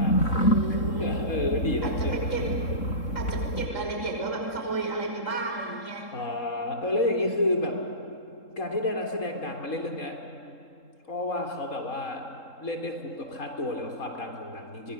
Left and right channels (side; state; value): right; late; 3.7 ms